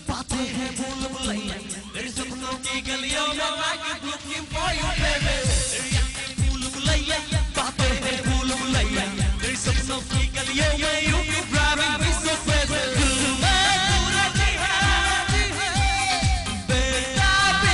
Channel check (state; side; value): identical; both; correlation 1.00